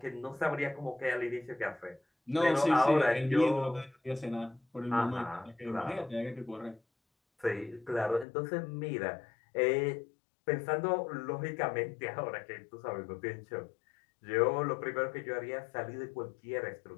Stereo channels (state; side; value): drops out; right; at 8.2 s